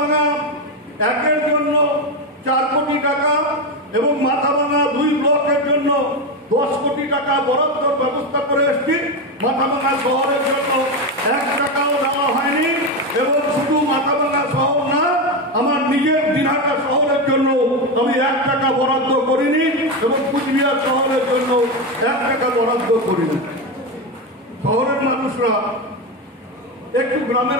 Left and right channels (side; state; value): both; normal; correlation 0.13